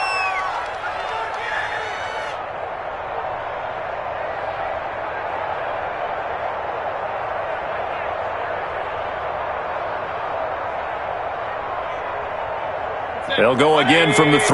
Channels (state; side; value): identical; both; correlation 1.00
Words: They'll go again from the